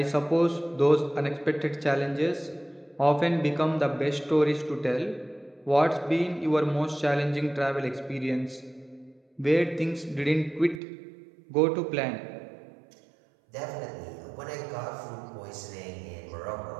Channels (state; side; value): drops out; left; at 10.8 s